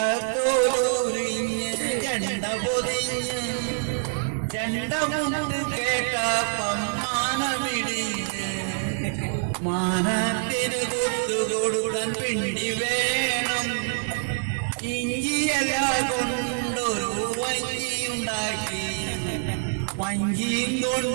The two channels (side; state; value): left; silent; 61 dB below the other